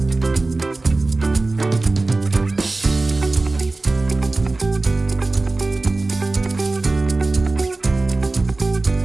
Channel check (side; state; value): left; quieter; 3.2 dB